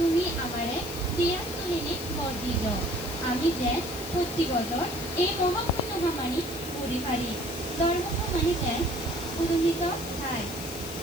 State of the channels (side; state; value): left; noise; hiss, 12 dB below the sound